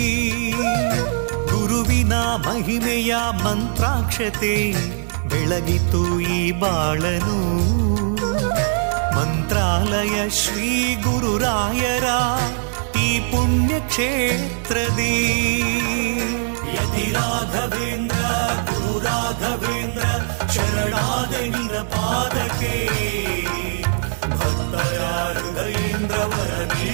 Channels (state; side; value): silent; left; digital silence